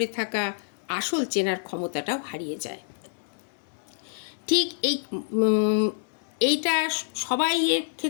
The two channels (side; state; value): right; silent; digital silence